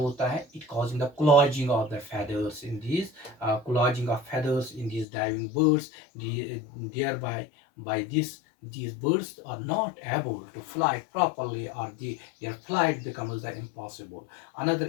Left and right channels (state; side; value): drops out; right; at 5.1 s